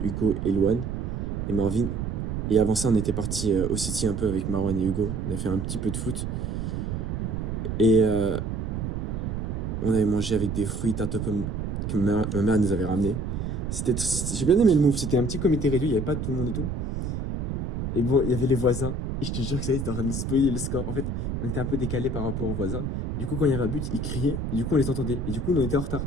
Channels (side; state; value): right; noise; rumble, 3 dB below the sound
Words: Hugo et Louane et Marvin. Et avant ça, on était parti au City un peu avec Marwan et Hugo. On a fait un petit peu de foot. Et on avait mangé avec des fruits tarte aux pommes que ma mère nous avait ramenés. J'ai bien aimé le move. C'était un petit comité réduit, il n'y avait pas tout le monde et tout. Et bon, il y avait les voisins. Et je te jure que ça y est, c'était en train de me spoiler le score. En fait, on était un peu décalé par rapport aux voisins. Du coup, quand il y avait un but, ils criaient. Et du coup, on les entendait. Et du coup, on était en retard.